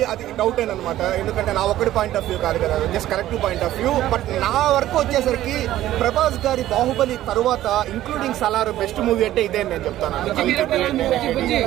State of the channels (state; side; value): quieter; left; 13.8 dB